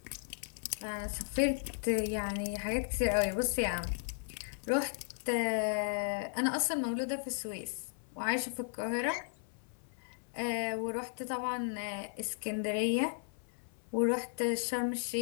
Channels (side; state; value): right; silent; 54 dB below the other